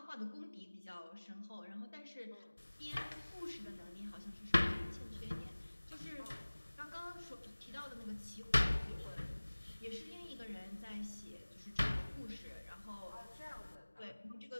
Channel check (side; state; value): both; inverted; correlation -1.00